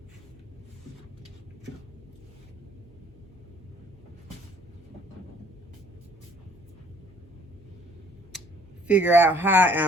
figure out how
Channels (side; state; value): both; normal; correlation 0.57